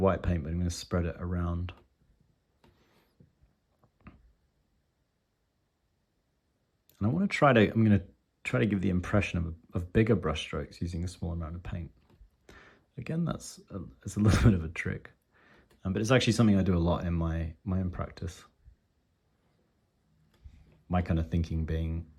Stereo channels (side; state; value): both; identical; correlation 1.00